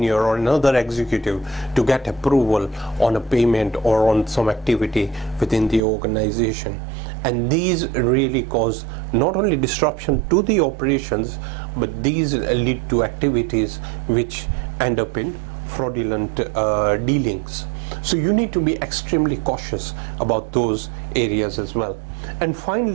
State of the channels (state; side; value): drops out; left; at 5.8 s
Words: or another executive to get approval on a payment or on some activity within the organization. And these really cause not only disruption to the operations, but these lead to activities which end up in fraudulent dealings. So you need to be extremely cautious about those areas as well. And